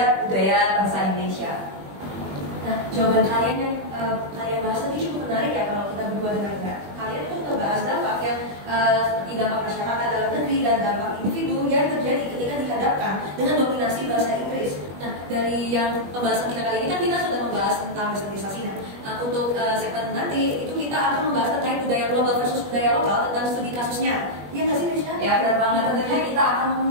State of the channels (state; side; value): late; left; 21 ms